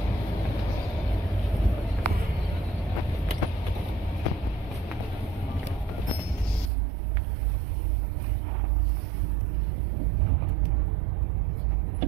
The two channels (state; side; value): drops out; left; at 6.7 s